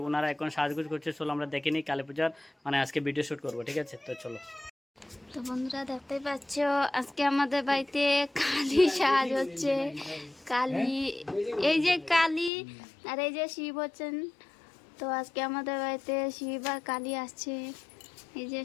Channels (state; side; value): drops out; right; at 12.5 s